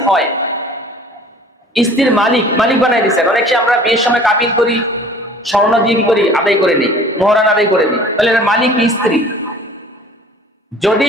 হয়, স্ত্রীর মালিক বানাই দিচ্ছেন, অনেক সময় আমরা বিয়ের সময় কাবিন করি, স্বর্ণ দিয়ে কি করি, আদায় করে নিই, মোহরান আদায় করে নিই, তাহলে মালিক স্ত্রী। যদি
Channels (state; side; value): normal; both; correlation 0.48